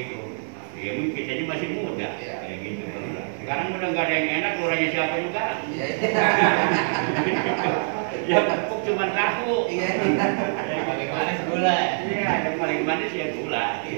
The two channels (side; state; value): left; silent; digital silence